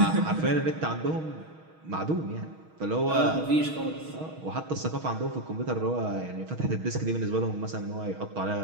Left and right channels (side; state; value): left; late; 6.3 ms